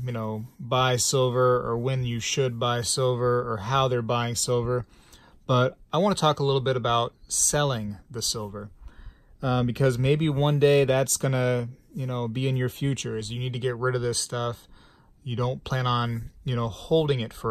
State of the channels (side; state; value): both; identical; correlation 1.00